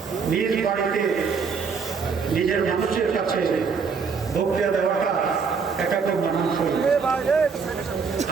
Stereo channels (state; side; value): quieter; left; 5.5 dB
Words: নিজ বাড়িতে নিজের মানুষের কাছে বক্তব্য দেওয়াটা এটা খুব মানানসই।